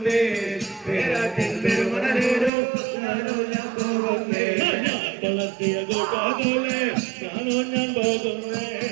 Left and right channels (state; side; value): drops out; left; at 2.5 s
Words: പേരാട്ടിൻ പെരുമണലേലോ ഞാനോ ഞാൻ പോകുന്നേ വളർത്തിയ കൂട്ടാതോലെ ഞാനോ ഞാൻ പോകുന്നേ